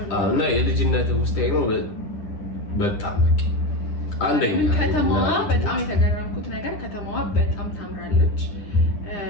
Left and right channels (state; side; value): late; right; 9.9 ms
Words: እና የልጅነት ውስጥ ነው በጣም በቃ አንደኛ ከተማዋ በጣም የተገረምኩት ነገር ከተማዋ በጣም ታምራለች።